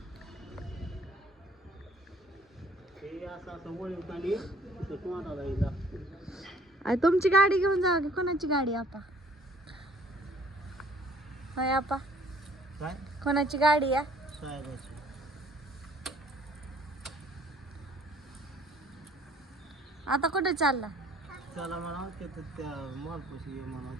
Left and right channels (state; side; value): normal; both; correlation 0.57